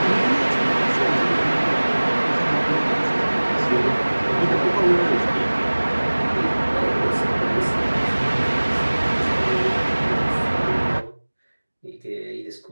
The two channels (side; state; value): both; inverted; correlation -1.00